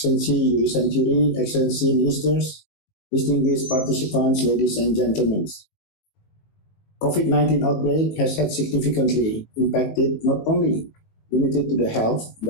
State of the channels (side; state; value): right; late; 19 ms